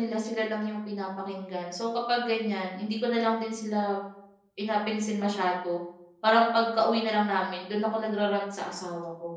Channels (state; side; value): identical; both; correlation 1.00